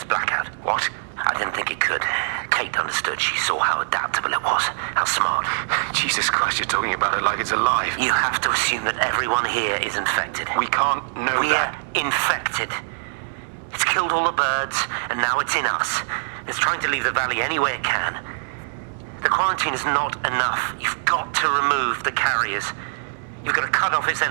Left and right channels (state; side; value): silent; left; 63 dB below the other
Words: blackout. What? I didn't think it could. Kate understood. She saw how adaptable it was. How smart. Jesus Christ, you're talking about it like it's alive. You have to assume that everyone here is infected. We can't know that. We're infected. It's killed all the birds, and now it's in us. It's trying to leave the valley any way it can. The quarantine is not enough. You've got to remove the carriers. You've got to cut off its